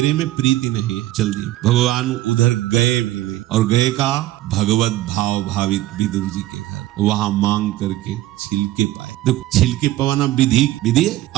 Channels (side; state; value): left; quieter; 15.4 dB